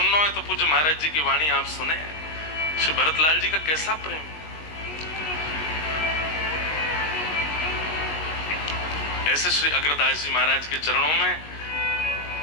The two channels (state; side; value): late; right; 19 ms